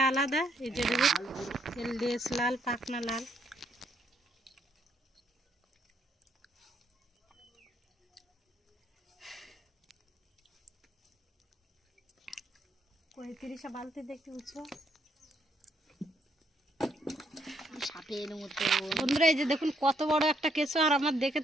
আলাদা। এই যে দেখুন, এর লেজ লাল, পাখনা লাল। পঁয়ত্রিশে বালতি দেখতে উঁচু সাপের মতো। বন্ধুরা, এই যে দেখুন কত বড় একটা কেঁচো, আর আমার দেখে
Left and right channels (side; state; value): both; normal; correlation 0.72